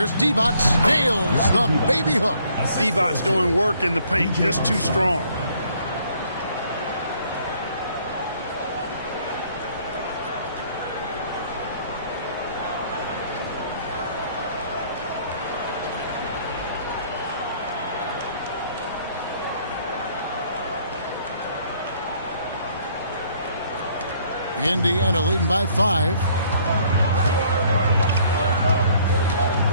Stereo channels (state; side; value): inverted; both; correlation -0.63